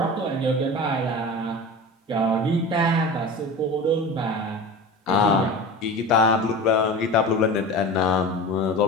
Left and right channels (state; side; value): normal; both; correlation 0.32